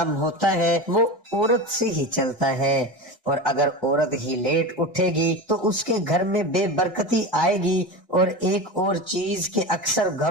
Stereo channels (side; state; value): both; normal; correlation 0.25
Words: ہوتا ہے وہ عورت سے ہی چلتا ہے، اور اگر عورت ہی لیٹ اٹھے گی تو اس کے گھر میں بے برکتی آئے گی۔ اور ایک اور چیز کہ اکثر